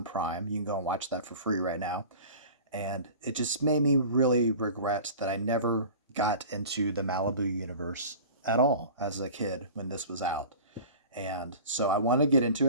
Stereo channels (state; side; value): inverted; both; correlation -0.39